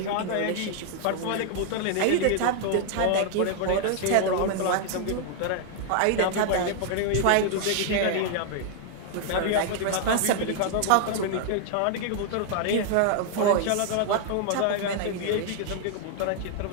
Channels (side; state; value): both; different; correlation 0.00